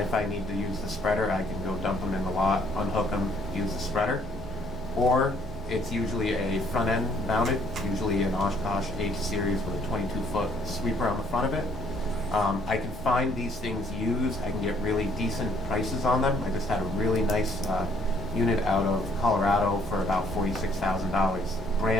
I need to use the spreader, I can go dump them in the lot, unhook them, use the spreader. Or it's usually a front end mounted, usually an Oshkosh H series with a 22-foot sweeper on the front of it. I can find these things used. I can get really decent prices on them. I just had a really nice unit out of Colorado for about $46,000.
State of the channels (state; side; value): normal; both; correlation 0.64